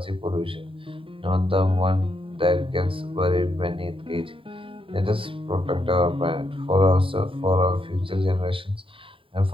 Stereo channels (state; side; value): late; left; 0.25 ms